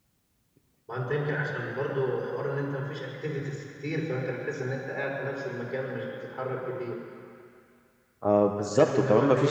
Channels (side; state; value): both; identical; correlation 1.00